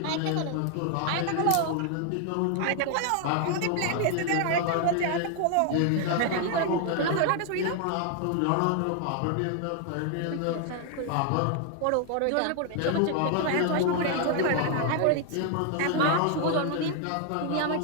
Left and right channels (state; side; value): different; both; correlation 0.00